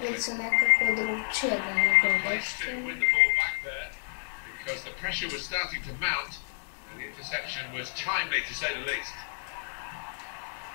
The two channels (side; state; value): right; silent; 58 dB below the other